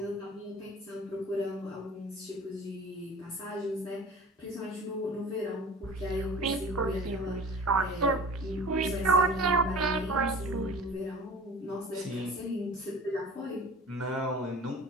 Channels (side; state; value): both; normal; correlation 0.41